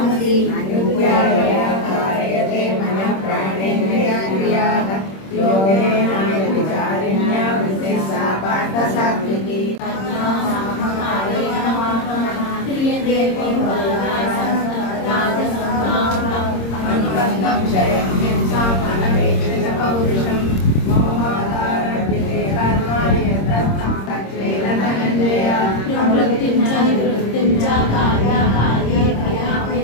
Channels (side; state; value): right; late; 26 ms